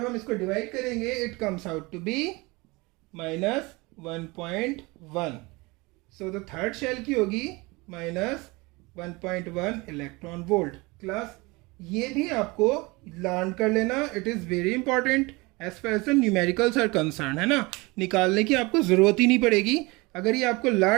हम इसको डिवाइड करेंगे it comes out to be minus 1.1, so the third shell की होगी minus 1.1 इलेक्ट्रॉन वोल्ट। क्लास, ये भी आपको लर्न कर लेना, it is very important as far as the numericals are concern, है ना। निकालने की आपको ज़रूरत ही नहीं पड़ेगी, अगर ये आपको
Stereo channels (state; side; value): quieter; left; 24.5 dB